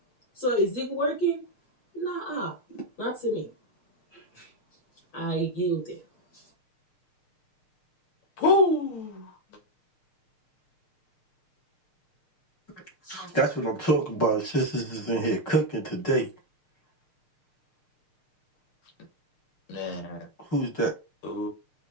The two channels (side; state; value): right; late; 6.6 ms